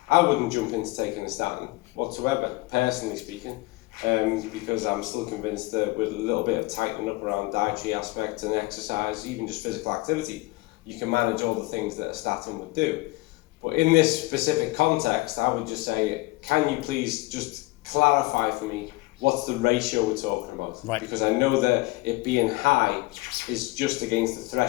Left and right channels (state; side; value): quieter; right; 22.0 dB